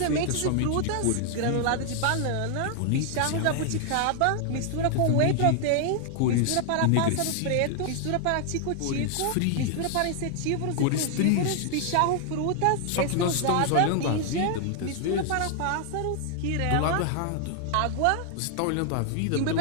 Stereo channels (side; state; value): both; different; correlation 0.00